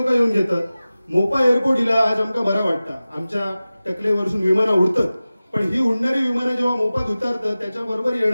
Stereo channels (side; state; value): both; inverted; correlation -0.96